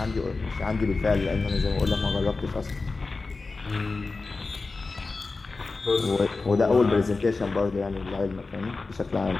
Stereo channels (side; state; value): right; quieter; 3.8 dB